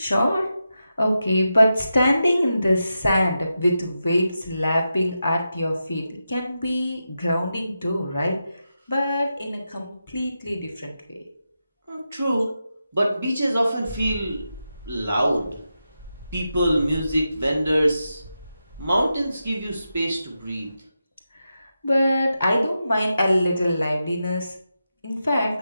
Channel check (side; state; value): both; inverted; correlation -0.89